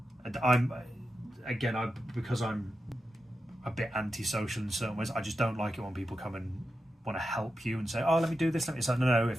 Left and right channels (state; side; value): normal; both; correlation 0.89